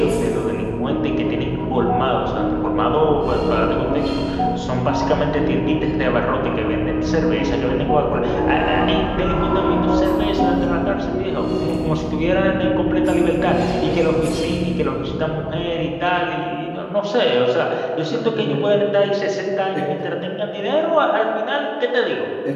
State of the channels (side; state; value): both; identical; correlation 1.00